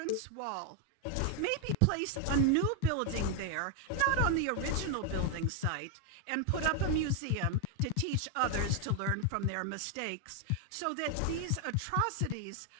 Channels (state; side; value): different; both; correlation 0.01